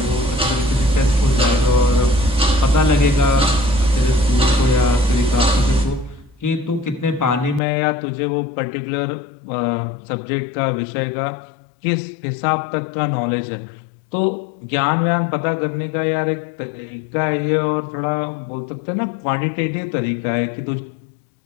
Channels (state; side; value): drops out; right; at 7.6 s